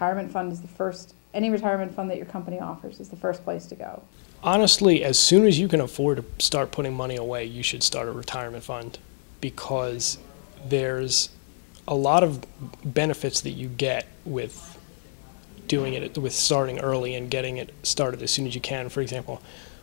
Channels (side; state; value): right; silent; digital silence